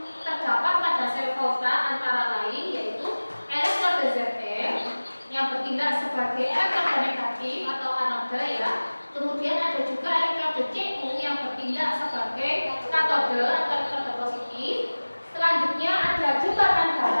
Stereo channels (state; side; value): inverted; both; correlation -1.00